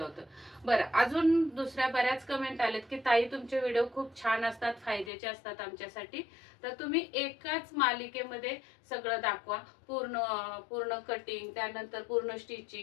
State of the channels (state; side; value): drops out; right; at 5.1 s